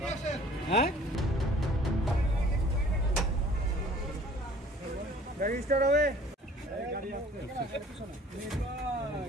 হ্যাঁ, গাড়ি স্টার্ট হবে।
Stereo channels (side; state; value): both; normal; correlation 0.52